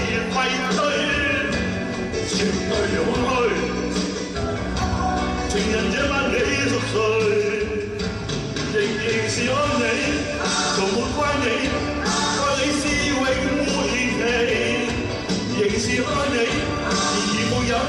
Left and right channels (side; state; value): both; identical; correlation 1.00